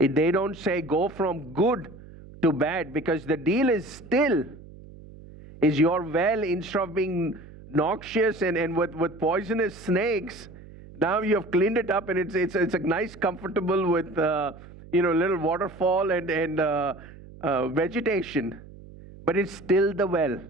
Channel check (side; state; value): right; noise; hum, 19 dB below the sound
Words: don't say go from good to bad, because the deal is still, is your well, instead of being noxious and with poisonous snakes, now you have cleaned it up and it's a nice, comfortable with little waterfall and vegetation, but it's still the well.